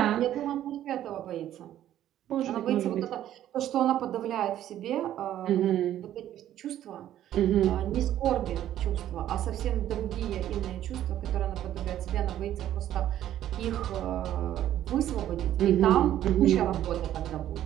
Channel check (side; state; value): left; quieter; 12.0 dB